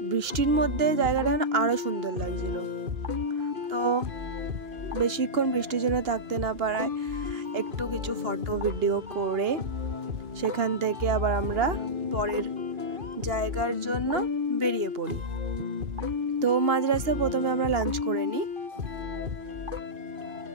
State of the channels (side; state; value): left; late; 2.8 ms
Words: বৃষ্টির মধ্যে জায়গাটা আরও সুন্দর লাগছিল। তো বেশিক্ষণ বৃষ্টির জন্য থাকতে না পারায় একটু কিছু ফটো ভিডিও করে সেখান থেকে আবার আমরা পরের জায়গার জন্য বেরিয়ে পড়ি। তো মাঝ রাস্তায় প্রথমে আমরা লাঞ্চ করে নিই,